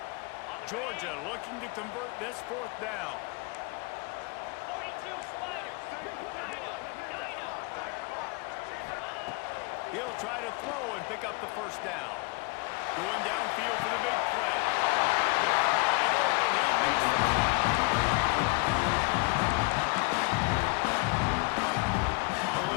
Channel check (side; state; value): right; quieter; 27.9 dB